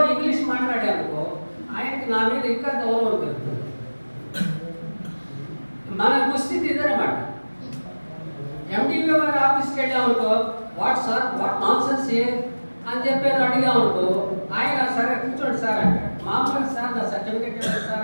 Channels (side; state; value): both; inverted; correlation -1.00